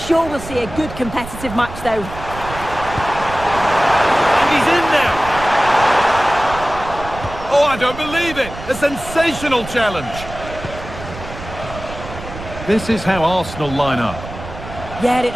we'll see a good competitive match, though. And he's in now. Oh, I don't believe it. A sensational challenge. This is how Arsenal line up. Yeah, it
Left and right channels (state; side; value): noise; right; rumble, 12 dB below the sound